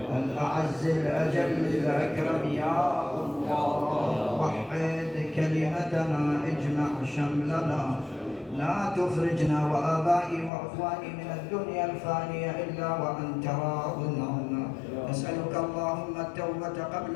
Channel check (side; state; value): right; drops out; at 10.5 s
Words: الأعز الأجل الأكرم يا الله. وحد كلمتنا اجمع شملنا لا تخرجنا وآبائي وأخواني من الدنيا الفانية إلا وأنت راض عنا. نسألك اللهم التوبة قبل